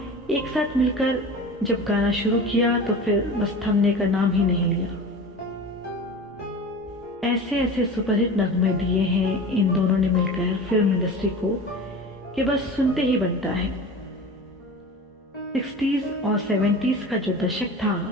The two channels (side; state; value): both; normal; correlation 0.34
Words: एक साथ मिलकर जब गाना शुरू किया तो फिर बस थमने का नाम ही नहीं लिया। ऐसे ऐसे सुपरहिट नगमे दिए हैं इन दोनों ने मिलकर फिल्म इंडस्ट्री को कि बस सुनते ही बनता है। 60s और 70s का जो दशक था